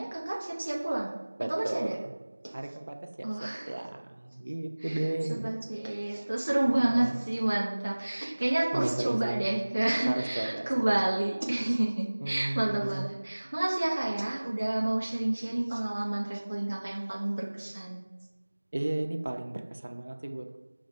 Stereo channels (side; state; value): both; inverted; correlation -1.00